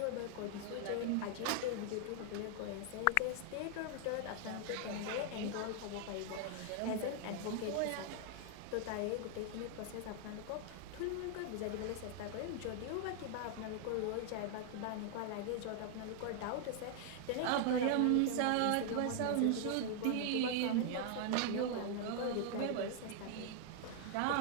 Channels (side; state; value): both; different; correlation 0.00